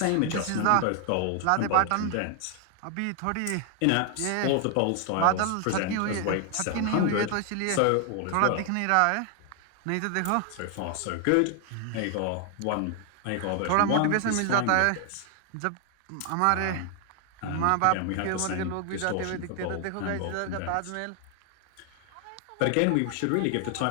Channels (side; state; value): both; different; correlation 0.00